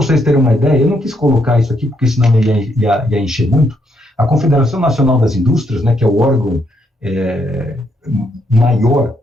terem uma ideia, eu não quis colocar isso aqui, porque senão ia encher muito. A Confederação Nacional das Indústrias, né, que é o órgão maior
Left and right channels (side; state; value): both; normal; correlation 0.75